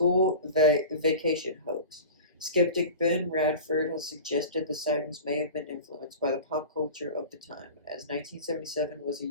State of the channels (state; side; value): inverted; both; correlation -0.35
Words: vacation hoax. Skeptic Ben Radford has suggested the sightings may have been influenced by the pop culture of the time, as 1977 was a